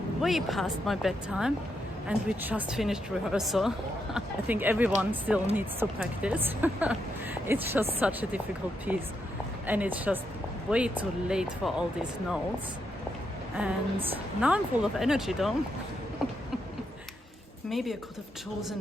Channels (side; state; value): both; normal; correlation 0.81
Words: way past my bedtime, and we just finished rehearsal. I think everyone still needs to practice. It's just such a difficult piece, and it's just way too late for all these notes. And now I'm full of energy though. Maybe I could have